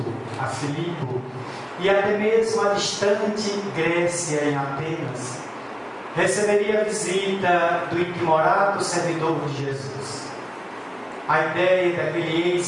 a Filipo e até mesmo a distante Grécia, em Atenas. Receberia a visita do intimorado servidor de Jesus. A ideia daquele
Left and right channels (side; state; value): both; identical; correlation 1.00